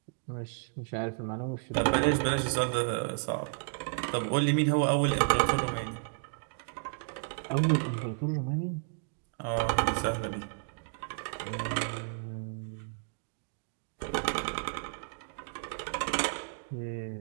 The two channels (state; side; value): silent; left; 56 dB below the other